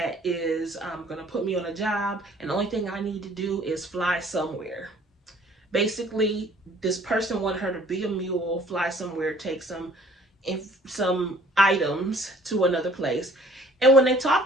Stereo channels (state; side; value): normal; both; correlation 0.55